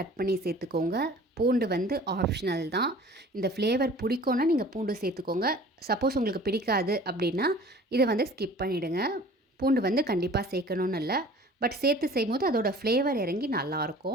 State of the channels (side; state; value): both; normal; correlation 0.46